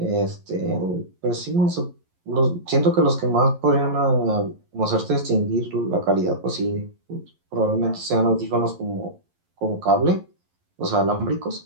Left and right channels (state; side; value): late; left; 11 ms